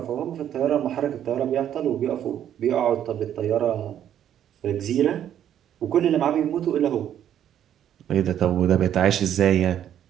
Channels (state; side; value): quieter; left; 10.3 dB